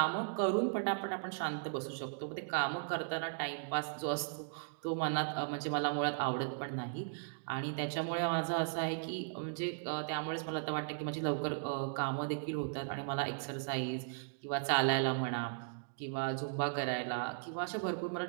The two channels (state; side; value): silent; left; digital silence